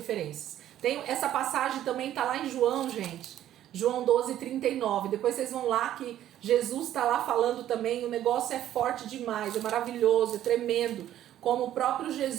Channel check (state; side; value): quieter; left; 12.1 dB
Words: Essa passagem também tá lá em João, gente. João 12:39. Depois vocês vão lá que Jesus está lá falando também. O negócio é forte demais, é maravilhoso, é tremendo. Como o próprio